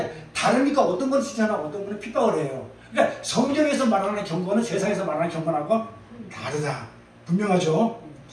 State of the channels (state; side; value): identical; both; correlation 1.00